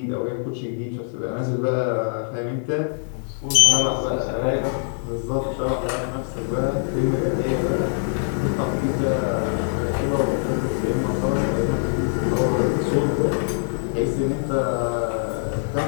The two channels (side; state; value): right; silent; digital silence